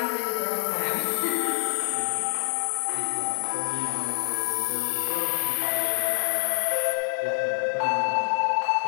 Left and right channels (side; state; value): right; silent; digital silence